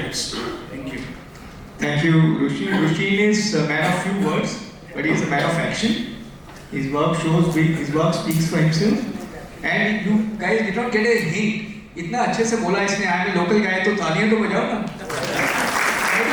Thank you. Thank you, Rushin. Rushin is a man of few words, but he is a man of action. His work speaks for himself. And you guys did not get a hint. इतना अच्छे से बोला इसने, I am a local guy, तो तालियां तो बजाओ ना.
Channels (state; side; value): identical; both; correlation 1.00